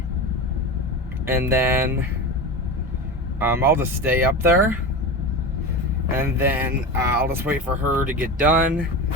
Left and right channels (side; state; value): both; normal; correlation 0.25